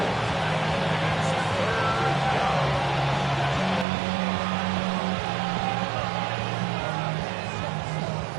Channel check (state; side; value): drops out; left; at 3.9 s